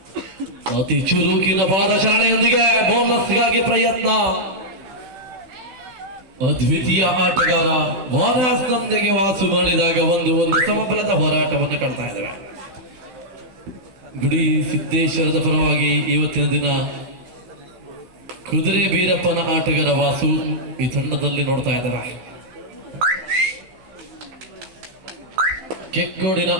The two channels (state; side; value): late; left; 16 ms